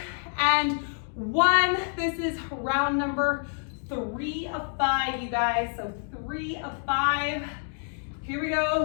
and 1. This is round number 3 of 5, you guys. So 3 of 5. Here we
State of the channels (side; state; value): right; silent; digital silence